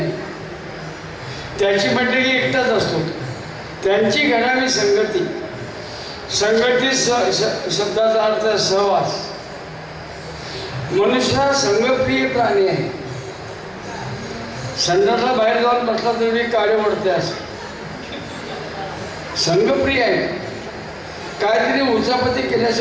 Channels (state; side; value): identical; both; correlation 1.00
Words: त्याची म्हटलं की एकटाच असतो. त्यांची घडावी संगती, संगती शब्दाचा अर्थ सहवास. मनुष्य हा संगप्रिय प्राणी आहे. संडासला बाहेर जाऊन बसला तरी काळे ओढते असं संगप्रिय आहे. काहीतरी उचापती